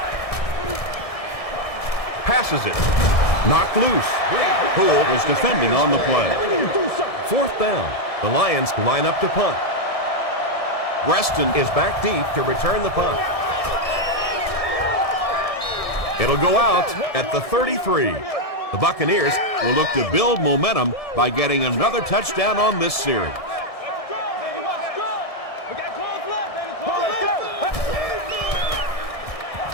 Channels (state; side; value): late; right; 1.6 ms